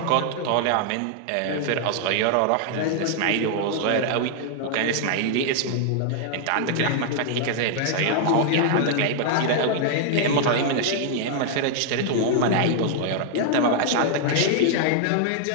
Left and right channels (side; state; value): both; different; correlation -0.01